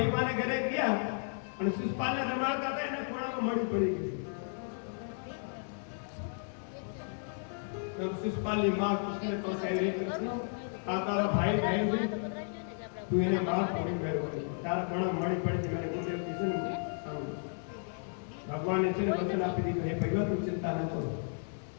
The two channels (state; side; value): silent; right; 55 dB below the other